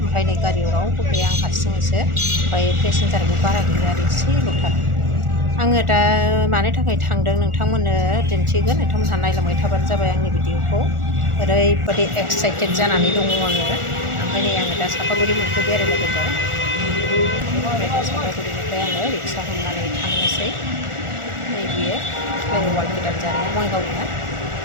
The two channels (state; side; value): late; left; 1.4 ms